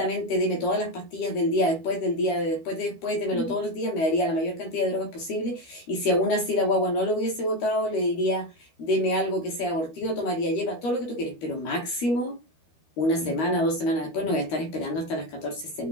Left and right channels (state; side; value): late; right; 12 ms